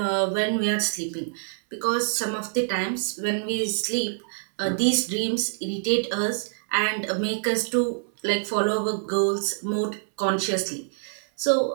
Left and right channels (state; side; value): silent; left; 61 dB below the other